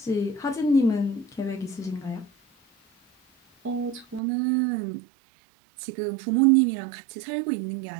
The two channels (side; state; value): left; drops out; at 4.2 s